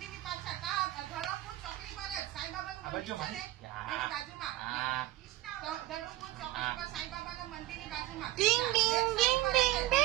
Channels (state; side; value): quieter; left; 16.6 dB